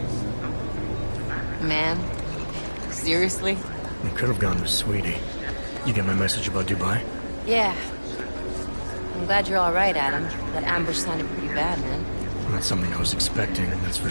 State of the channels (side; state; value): both; inverted; correlation -1.00